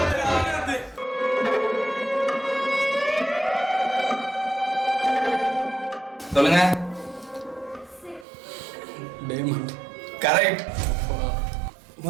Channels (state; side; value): drops out; left; at 8.2 s